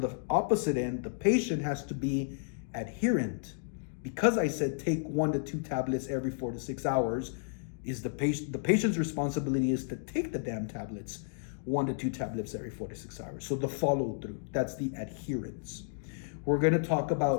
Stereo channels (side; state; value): right; silent; digital silence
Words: the opposite end, the patient has to be adherent. Because I said take 1 to 2 tablets every 4 to 6 hours, is the patient's responsibility is to take the damn tablets 1 to 2 tablets every 4 to 6 hours. So the follow through, that's the adherence. We're going to talk